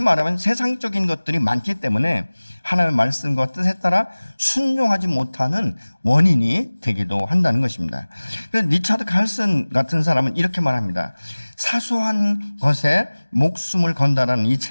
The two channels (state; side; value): inverted; both; correlation -1.00